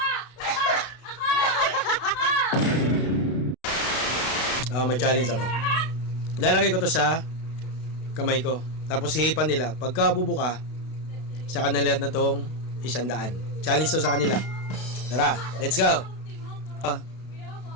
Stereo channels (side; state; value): right; late; 32 ms